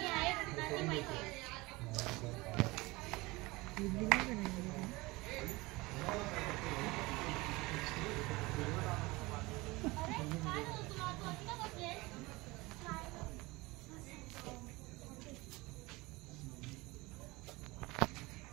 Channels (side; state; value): left; quieter; 22.3 dB